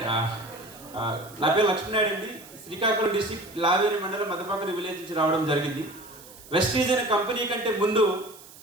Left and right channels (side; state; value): right; noise; hiss, 20 dB below the sound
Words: పేరు లక్ష్మీనాయుడు అండి. శ్రీకాకుళం డిస్ట్రిక్ట్ లావేరి మండలం మదపాకరి విలేజ్ నుంచి రావడం జరిగింది. వెస్టీజ్ అనే కంపెనీ కంటే ముందు